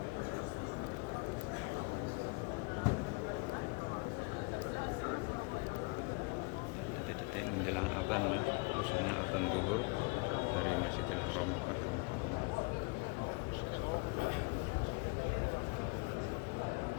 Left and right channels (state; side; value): quieter; right; 29.8 dB